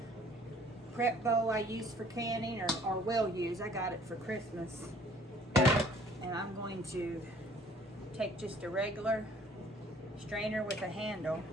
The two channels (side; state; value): both; normal; correlation 0.56